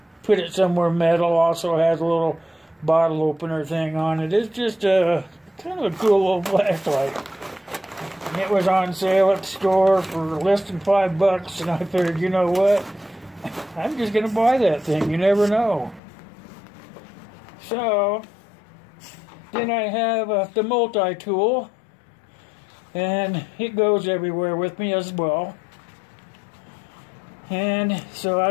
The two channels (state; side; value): drops out; right; at 16.0 s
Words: put it somewhere metal. Also has a little bottle opener thing on it. It's just a kind of a cool little flashlight. It was on sale at the store for less than $5, and I figured, you know what? I'm just going to buy that thing. You never know. So, then I have the multi-tool, and it goes everywhere with me as well. And so I